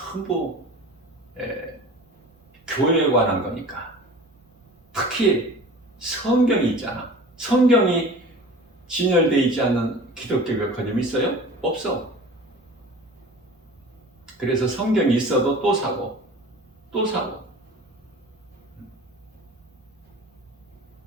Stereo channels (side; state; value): both; normal; correlation 0.40